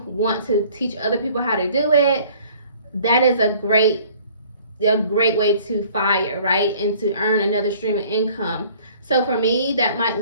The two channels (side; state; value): both; inverted; correlation -0.54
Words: want to teach other people how to do it, that is a great way to FIRE, right? And to earn another stream of income. So for me, that might